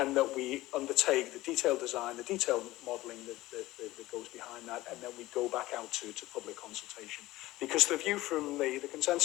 that we undertake the detailed design, the detailed modelling that goes behind that, and then we go back out to public consultation. Because the view from the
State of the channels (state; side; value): quieter; right; 17.7 dB